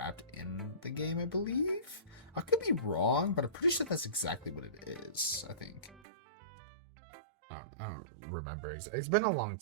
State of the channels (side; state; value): left; drops out; at 6.0 s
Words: in the game, I believe. I could be wrong, but I'm pretty sure that's exactly what it is. I think. I don't remember. It's been a long